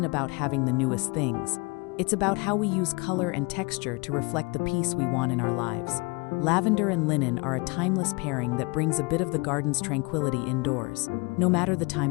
about having the newest things. It's about how we use color and texture to reflect the peace we want in our lives. Lavender and linen are a timeless pairing that brings a bit of the garden's tranquility indoors, no matter the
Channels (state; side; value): quieter; right; 28.6 dB